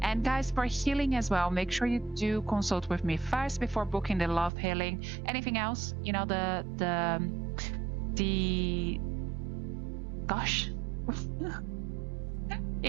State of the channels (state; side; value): drops out; left; at 4.5 s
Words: And guys, for healing as well, make sure you do consult with me first before booking the love healing. Anything else, you know, gosh.